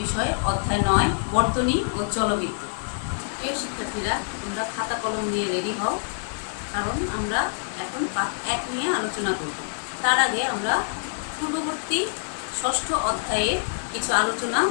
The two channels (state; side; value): silent; right; digital silence